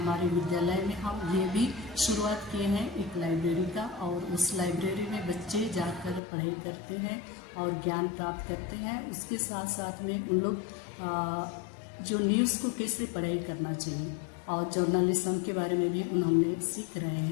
विद्यालय में हम ये भी शुरुआत किए हैं एक लाइब्रेरी का, और उस लाइब्रेरी में बच्चे जाकर पढ़ाई करते हैं और ज्ञान प्राप्त करते हैं। उसके साथ साथ में उन लोग जो न्यूज़ को कैसे पढ़ाई करना चाहिए और जर्नलिज्म के बारे में भी उन्होंने सीख रहे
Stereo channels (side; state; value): right; drops out; at 6.2 s